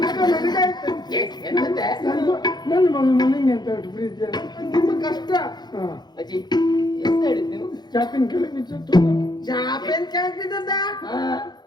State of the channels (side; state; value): right; late; 0.21 ms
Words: ನನ್ನ ಮಗ ನನಗೆ ಅಂತ ಬಿಟ್ಟು ಪ್ರೀತಿ ಅಲ್ಲ. ನಿಮ್ಮ ಕಷ್ಟ. ಹಾ, ಅಜ್ಜಿ ಎಂತ ಹೇಳಿದ್ ನೀವು? ಚಾಪಿನ ಕೆಳಗೆ ಬಿಟ್ಟು ಸತ್ತೋದ. ಚಾಪೇನ್ ಕೆಳಗ್ ಬಿದ್ದದ್ದ?